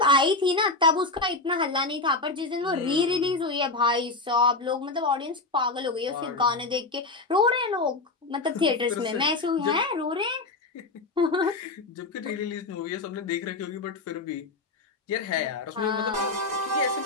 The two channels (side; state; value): right; quieter; 3.3 dB